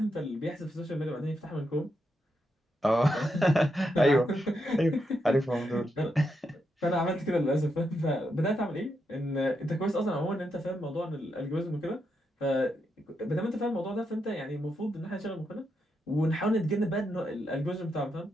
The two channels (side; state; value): both; normal; correlation 0.83